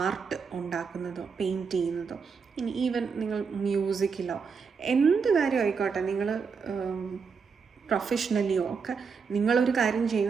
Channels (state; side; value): quieter; left; 5.6 dB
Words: ആർട്ട് ഉണ്ടാക്കുന്നതോ പെയിൻറ്റ് ചെയ്യുന്നതോ, ഇനി ഈവൻ നിങ്ങൾ മ്യൂസിക്കിലോ എന്ത് കാര്യം ആയിക്കോട്ടെ, നിങ്ങൾ പ്രൊഫഷണലിയോ ഒക്കെ നിങ്ങളൊരു കാര്യം